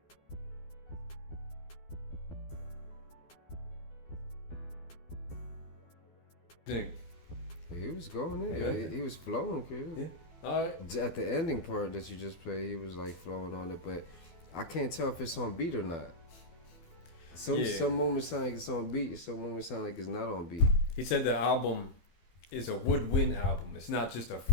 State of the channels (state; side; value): late; right; 12 ms